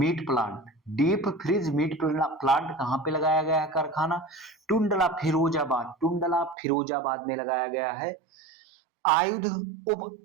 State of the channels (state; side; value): drops out; left; at 6.6 s